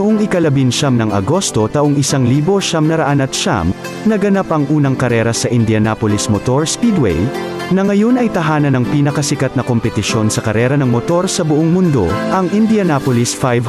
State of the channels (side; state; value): both; identical; correlation 1.00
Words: ika-19 ng Agosto taong 1909, naganap ang unang karera sa Indianapolis Motor Speedway, na ngayon ay tahanan ng pinakasikat na kompetisyon sa karera ng motor sa buong mundo, ang Indianapolis